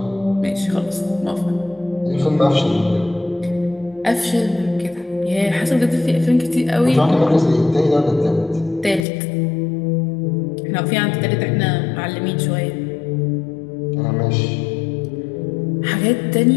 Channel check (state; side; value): drops out; right; at 9.1 s